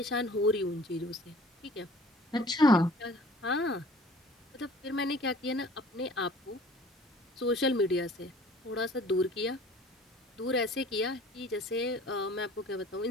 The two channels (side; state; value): both; normal; correlation 0.50